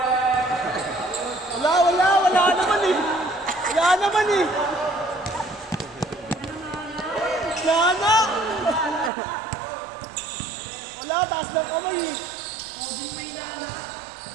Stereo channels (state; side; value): drops out; left; at 9.1 s